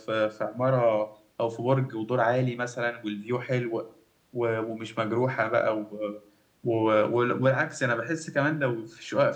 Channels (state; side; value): identical; both; correlation 1.00